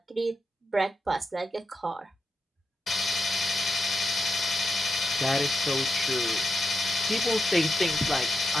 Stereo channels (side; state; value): both; normal; correlation 0.86